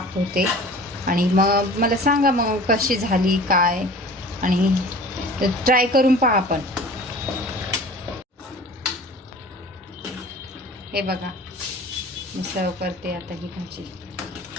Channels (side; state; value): both; normal; correlation 0.43